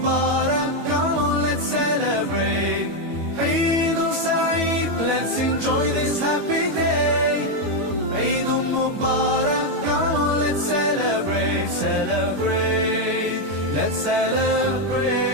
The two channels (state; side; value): late; left; 21 ms